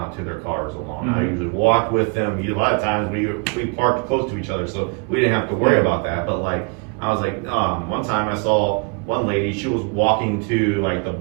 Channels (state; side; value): quieter; left; 34.3 dB